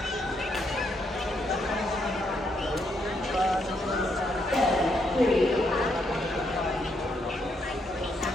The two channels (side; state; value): both; normal; correlation 0.76